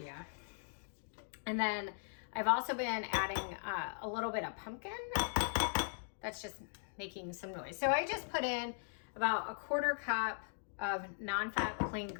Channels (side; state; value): right; silent; digital silence